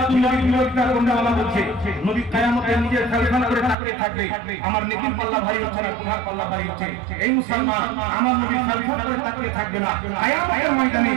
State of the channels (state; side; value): drops out; left; at 3.8 s